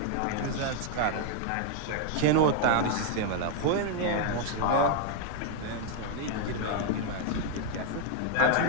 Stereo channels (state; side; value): different; both; correlation 0.00